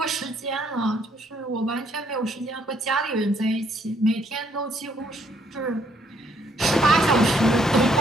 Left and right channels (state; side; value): normal; both; correlation 0.68